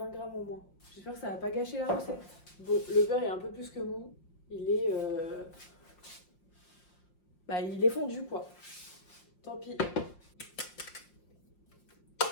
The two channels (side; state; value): right; late; 5.7 ms